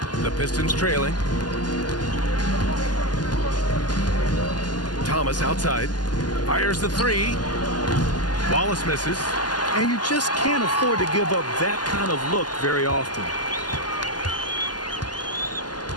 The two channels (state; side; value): late; right; 0.70 ms